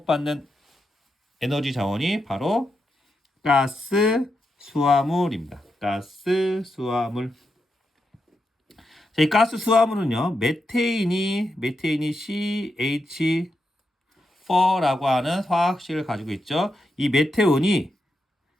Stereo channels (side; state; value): both; normal; correlation 0.85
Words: 에너지 자원이 바로 가스 수화물입니다. 가스 수화물. 자, 이 가스 수화물은요, 메테인이 CH4라고 하는 화학식을 가지고 있죠. 이 메테온이